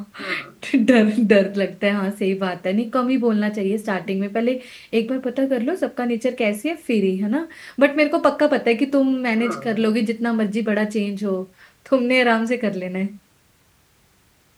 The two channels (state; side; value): identical; both; correlation 1.00